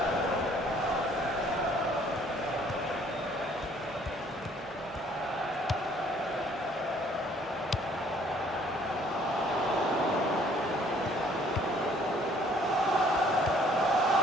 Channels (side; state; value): both; normal; correlation 0.60